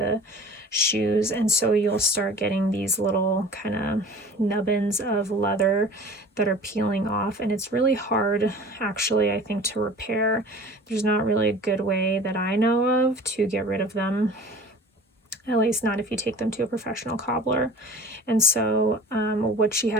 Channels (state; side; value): normal; both; correlation 0.43